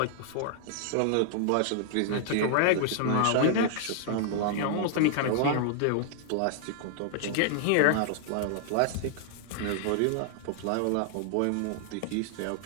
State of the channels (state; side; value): different; both; correlation -0.01